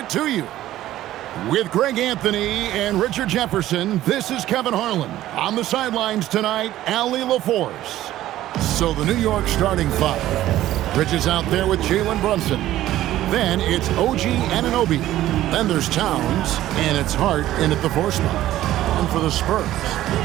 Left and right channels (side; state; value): left; quieter; 14.1 dB